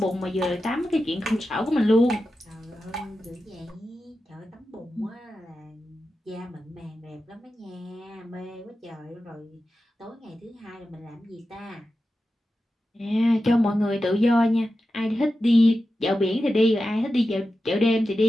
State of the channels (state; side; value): normal; both; correlation 0.92